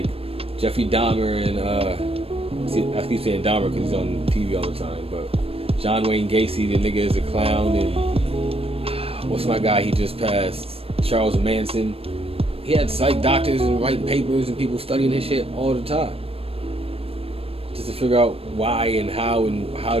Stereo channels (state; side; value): late; left; 0.28 ms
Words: Jeffrey Dahmer and I keep saying Dahmer because he's on TV all the time, but John Wayne Gacy, the nigga is a clown, and what's my guy? He just passed, Charles Manson. He had psych doctors and writing papers and people studying his shit all the time, just to figure out why and how